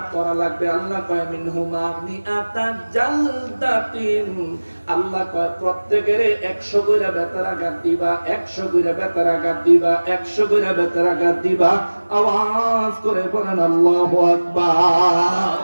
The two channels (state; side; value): inverted; both; correlation -1.00